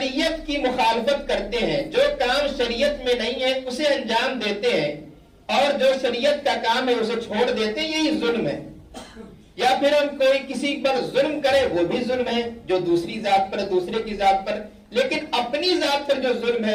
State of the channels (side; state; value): both; identical; correlation 1.00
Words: کی مخالفت کرتے ہیں، جو کام شریعت میں نہیں ہے اسے انجام دیتے ہیں، اور جو شریعت کا کام ہے اسے چھوڑ دیتے ہیں، یہی ظلم ہے. یا پھر ہم کوئی کسی پر ظلم کرے وہ بھی ظلم ہے، جو دوسری ذات پر، دوسرے کی ذات پر. لیکن اپنی ذات پر جو ظلم ہے